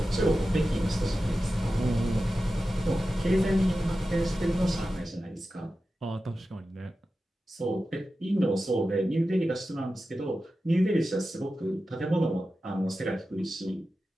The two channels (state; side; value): normal; both; correlation 0.93